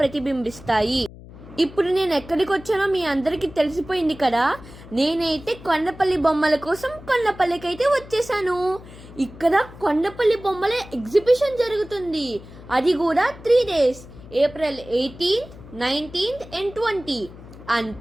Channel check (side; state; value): left; noise; hum, 18 dB below the sound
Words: ప్రతిబింబిస్తాయి. ఇప్పుడు నేను ఎక్కడికి వచ్చానో మీ అందరికీ తెలిసిపోయింది కదా. నేనైతే కొండపల్లి బొమ్మల కోసం కొండపల్లికి అయితే వచ్చేసాను. ఇక్కడ కొండపల్లి బొమ్మల ఎగ్జిబిషన్ జరుగుతుంది. అది కూడా 3 days, April 18th, 19th and 20.